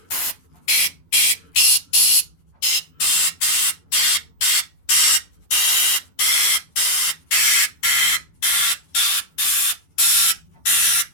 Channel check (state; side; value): late; right; 11 ms